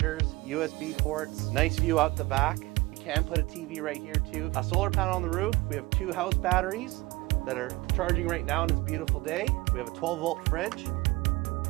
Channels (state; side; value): quieter; left; 21.7 dB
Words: USB ports, nice view out the back. You can put a TV right here too. A solar panel on the roof. We have 2 house batteries that are charging right now on this beautiful day. We have a 12-volt fridge.